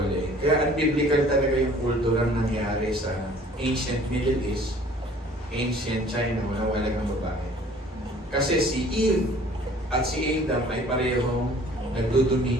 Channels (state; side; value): normal; both; correlation 0.52